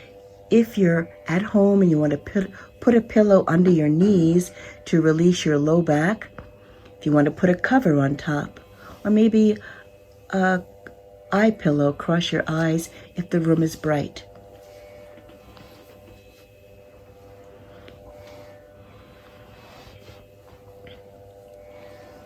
If you're at home and you want to put a pillow under your knees to release your low back, if you want to put a cover on top, or maybe a eye pillow across your eyes if the room is bright.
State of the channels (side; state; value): both; identical; correlation 1.00